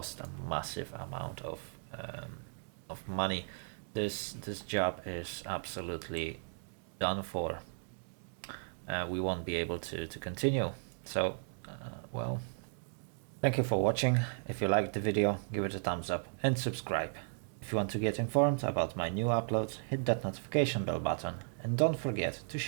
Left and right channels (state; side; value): silent; left; 54 dB below the other